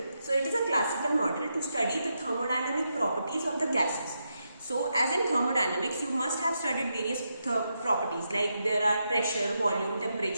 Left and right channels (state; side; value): inverted; both; correlation -0.84